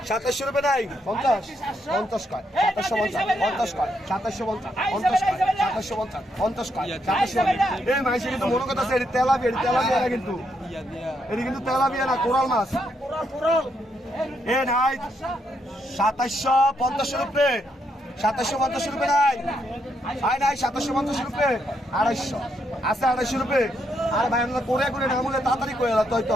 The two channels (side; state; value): both; normal; correlation 0.77